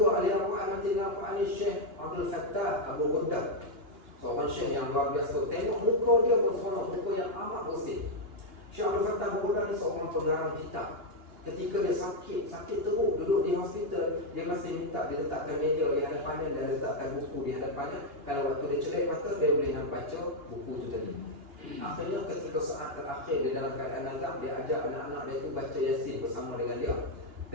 ahli Al-Quran mati dengan Al-Quran ni Syekh Abdul Fattah Abu Ghuddah. Seorang syekh yang luar biasa. Tengok muka dia berseronok, muka yang amat bersih. Syekh Abdul Fattah Abu Ghuddah ni seorang pengarang kitab. Ketika dia sakit teruk, duduk di hospital, dia masih minta diletakkan meja di hadapannya dan letakkan buku di hadapannya. Kalau waktu dia celik mata, dia boleh nak baca buku tu tadi. Akhirnya ketika saat terakhir dia dalam keadaan nazak, dia ajak anak-anak dia tu baca Yasin bersama dengan dia.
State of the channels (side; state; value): left; late; 2.9 ms